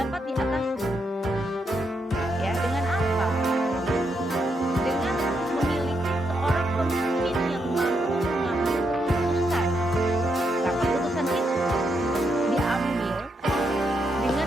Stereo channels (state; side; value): normal; both; correlation 0.80